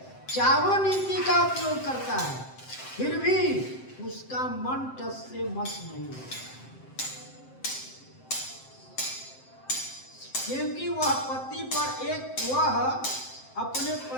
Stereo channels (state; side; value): late; right; 7.7 ms